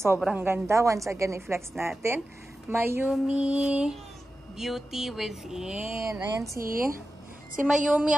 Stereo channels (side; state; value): both; normal; correlation 0.93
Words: ganda. Once again, i-flex natin. Mayumi Beauty Within. Ayan si Mayumi